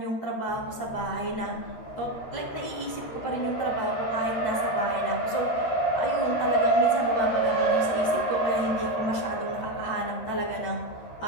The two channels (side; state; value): right; late; 13 ms